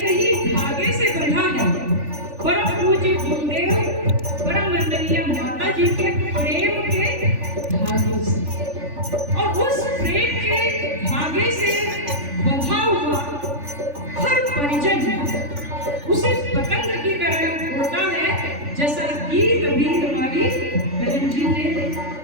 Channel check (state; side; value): late; left; 3.4 ms